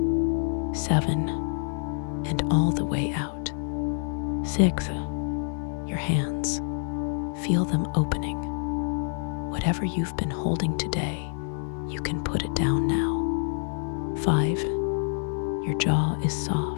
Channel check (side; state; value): right; silent; 60 dB below the other